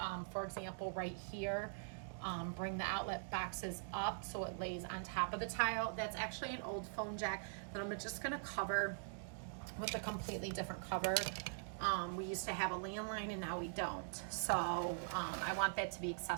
For example, right here, bring the outlet boxes up so it lays on top of the tile. That's actually an old foam jack that I'm just gonna cover with a completely different cover. We used to have a landline and now we don't. So I want that to be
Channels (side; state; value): left; silent; digital silence